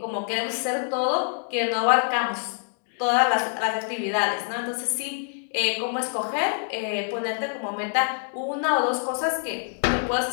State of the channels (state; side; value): silent; right; 61 dB below the other